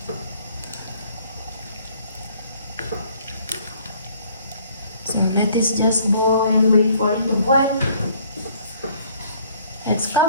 So let this just boil, wait for it to boil. Let's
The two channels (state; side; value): inverted; both; correlation -0.60